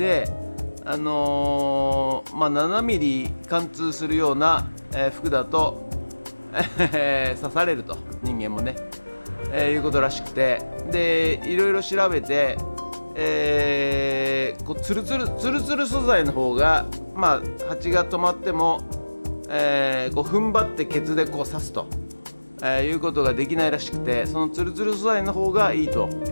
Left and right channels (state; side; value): inverted; both; correlation -1.00